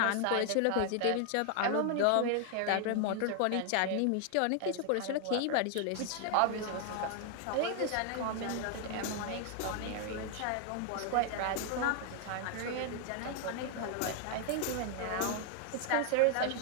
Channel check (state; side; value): different; both; correlation 0.00